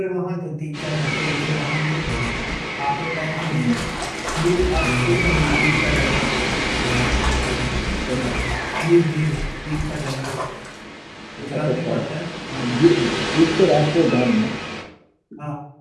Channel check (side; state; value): both; identical; correlation 1.00